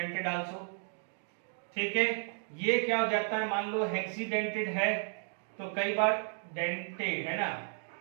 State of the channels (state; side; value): silent; left; 55 dB below the other